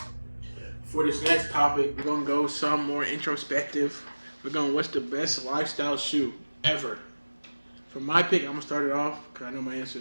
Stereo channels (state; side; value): inverted; both; correlation -1.00